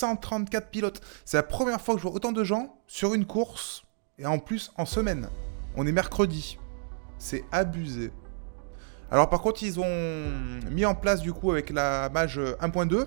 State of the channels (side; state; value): left; silent; digital silence